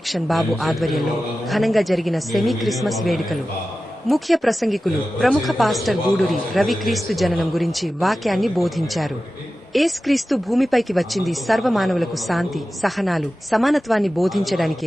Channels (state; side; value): normal; both; correlation 0.94